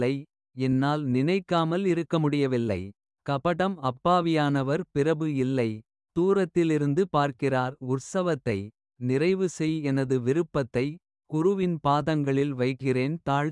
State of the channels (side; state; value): both; identical; correlation 1.00